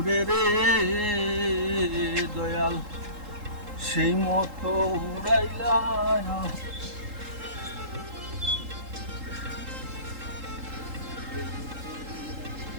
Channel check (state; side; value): late; left; 3.8 ms